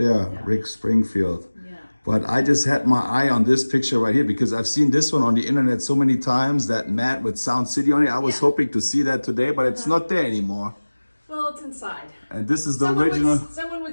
Yeah. Rick Springfield. Yeah. But I just had my eye on this picture right here because I've seen this one on the internet so many times, that mat with Sound City on it. I was Yeah. hoping to see that today, but it's not there anymore. Well, it's inside. And this is the Someone original. someone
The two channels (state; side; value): inverted; both; correlation -1.00